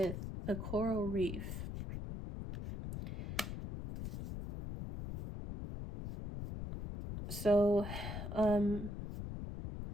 the coral reef. So,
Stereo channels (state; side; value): noise; left; rumble, 6 dB below the sound